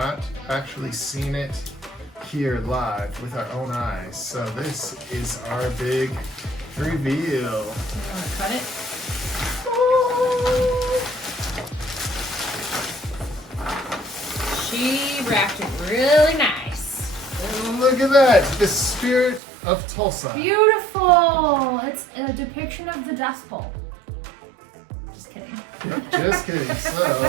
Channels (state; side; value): drops out; left; at 19.4 s